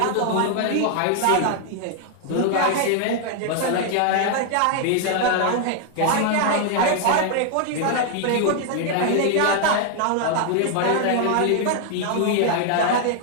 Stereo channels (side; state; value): both; different; correlation 0.00